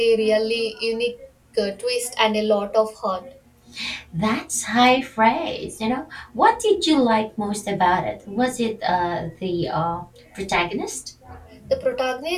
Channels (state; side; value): identical; both; correlation 1.00